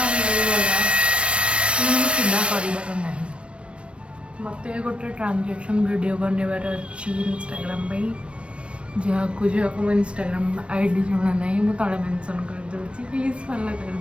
सीधा कर मत गोटे ट्रांजेक्शन वीडियो बनवार अच्छी इंस्टाग्राम जहाँ को इंस्टाग्राम आईडी जुड़ा ना मुझे तले मेंशन कर दूसरी प्लीज फॉलो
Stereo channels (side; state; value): left; late; 0.060 ms